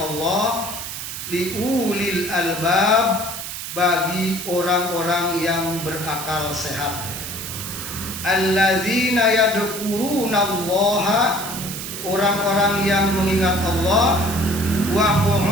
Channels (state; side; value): noise; right; hiss, 7 dB below the sound